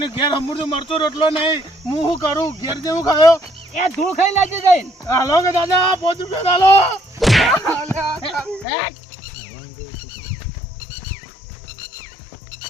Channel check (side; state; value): right; drops out; at 8.7 s